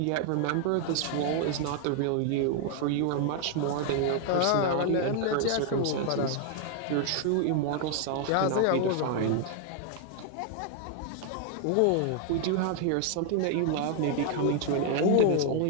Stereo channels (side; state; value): both; different; correlation 0.00